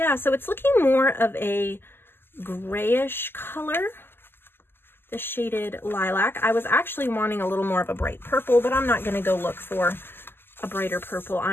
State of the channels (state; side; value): late; right; 0.10 ms